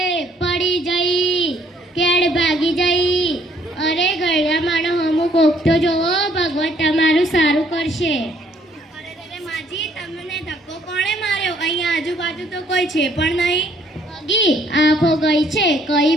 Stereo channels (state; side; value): normal; both; correlation 0.64